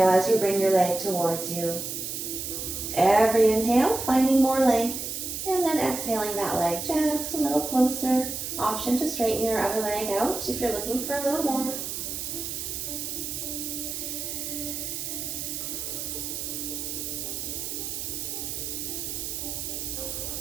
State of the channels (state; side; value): noise; right; hiss, 5 dB below the sound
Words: as you bring your leg towards you. Every inhale, finding more length. And then exhaling that leg just a little closer. Option to straighten your other leg out if you're looking for a little more.